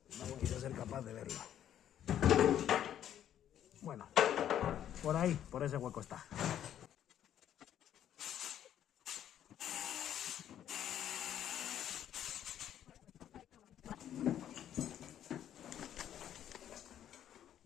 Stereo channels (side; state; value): right; quieter; 10.6 dB